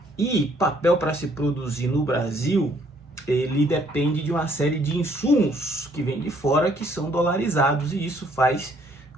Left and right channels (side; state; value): both; normal; correlation 0.65